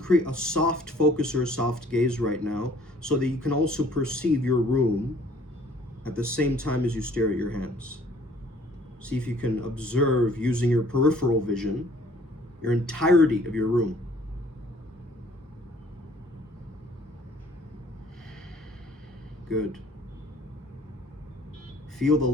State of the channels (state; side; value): normal; both; correlation 0.57